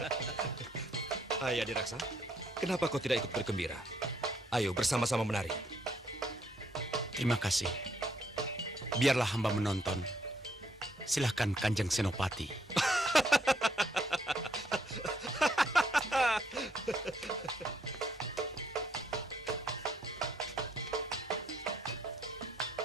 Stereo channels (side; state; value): both; normal; correlation 0.71